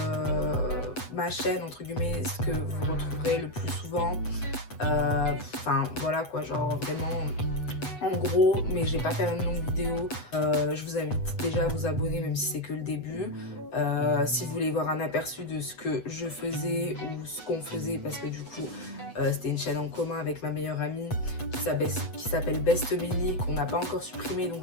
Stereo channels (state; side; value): late; right; 8.1 ms